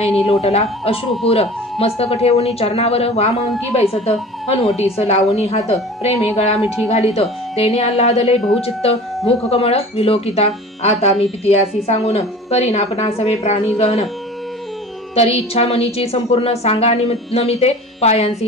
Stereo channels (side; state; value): both; normal; correlation 0.40